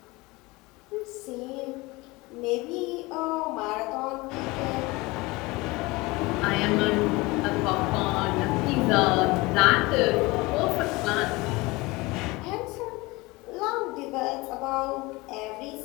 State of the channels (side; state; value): right; quieter; 22.8 dB